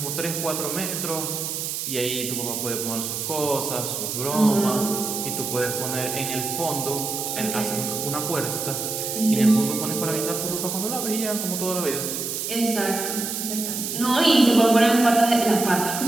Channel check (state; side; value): noise; right; hiss, 4 dB below the sound